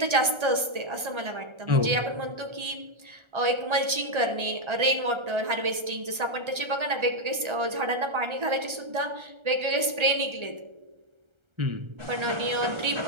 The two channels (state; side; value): late; left; 1.3 ms